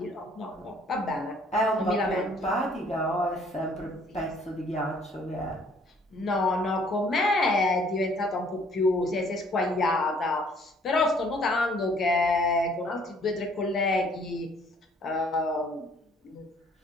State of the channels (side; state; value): both; normal; correlation 0.60